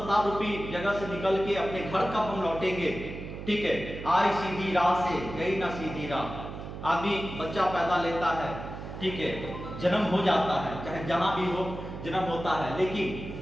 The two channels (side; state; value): right; noise; hum, 9 dB below the sound